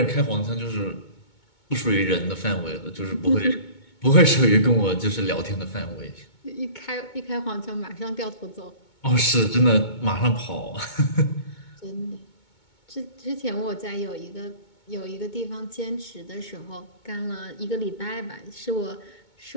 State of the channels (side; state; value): right; late; 2.2 ms